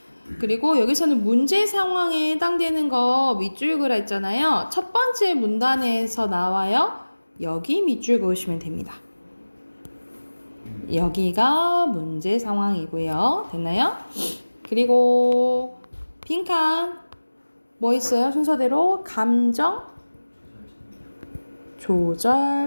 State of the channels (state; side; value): inverted; both; correlation -1.00